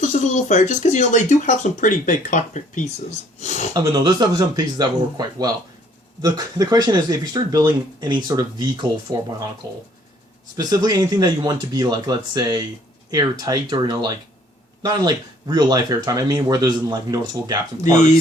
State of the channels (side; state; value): both; normal; correlation 0.60